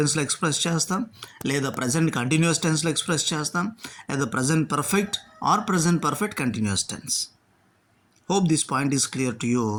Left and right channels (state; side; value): identical; both; correlation 1.00